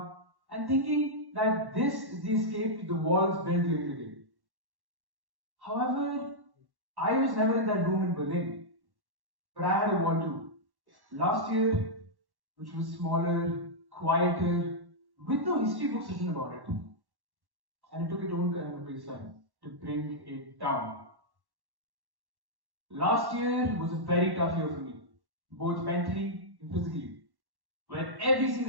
and thinking that this is the escape to the walls built during the day. However, I was never in that room in Berlin, but I had a wall too. Last year, which was smaller, quieter, with no history books written about it. And it took its own kind of baseline to bring it down. Last year was a very tough year for me, both mentally and physically, where every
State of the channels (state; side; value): late; left; 1.1 ms